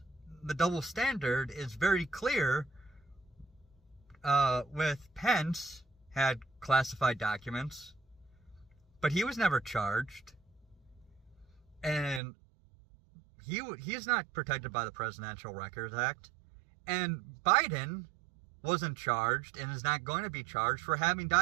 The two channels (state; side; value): drops out; left; at 12.2 s